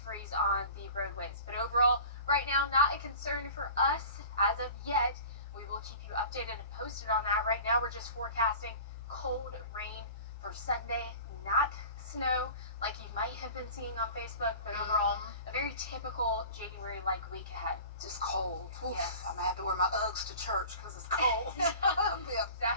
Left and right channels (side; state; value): both; inverted; correlation -0.40